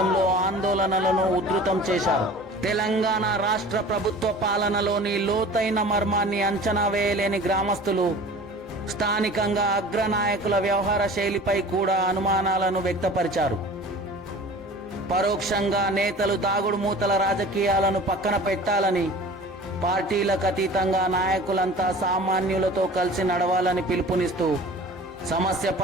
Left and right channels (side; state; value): both; normal; correlation 0.42